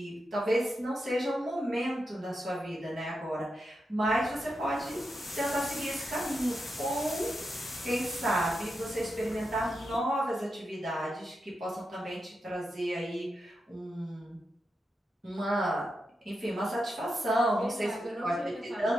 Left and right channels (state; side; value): normal; both; correlation 0.87